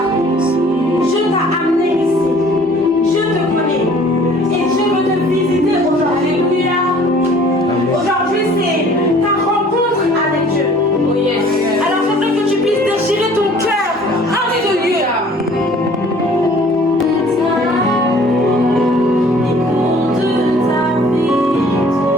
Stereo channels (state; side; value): normal; both; correlation 0.53